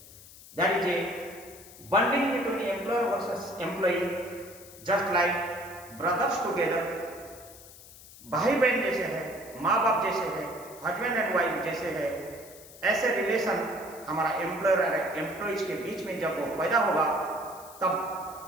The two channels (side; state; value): left; noise; hiss, 19 dB below the sound